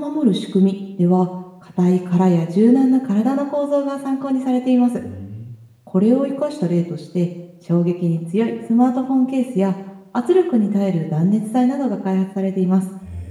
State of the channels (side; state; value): both; identical; correlation 1.00